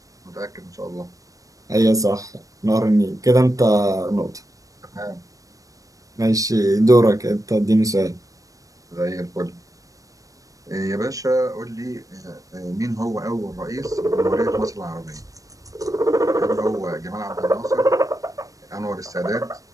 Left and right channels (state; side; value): late; left; 0.16 ms